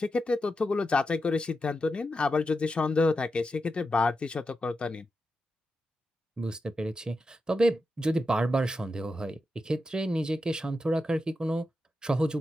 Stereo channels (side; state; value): both; normal; correlation 0.88